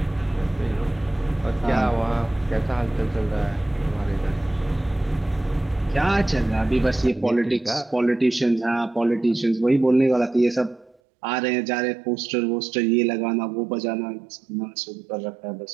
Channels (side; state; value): left; drops out; at 11.0 s